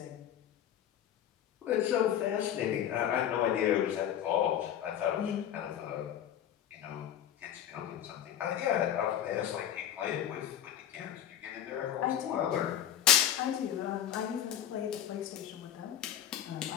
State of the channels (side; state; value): right; quieter; 10.4 dB